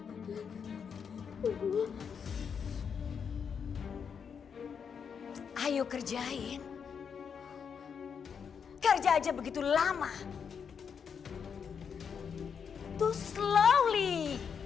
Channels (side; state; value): right; quieter; 6.8 dB